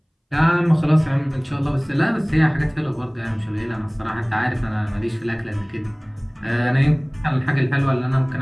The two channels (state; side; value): identical; both; correlation 1.00